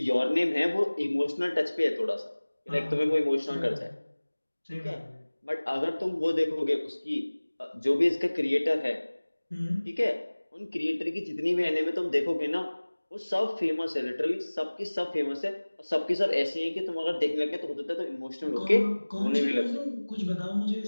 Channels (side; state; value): both; inverted; correlation -1.00